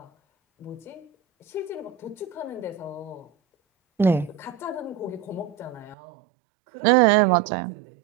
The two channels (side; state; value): left; drops out; at 6.0 s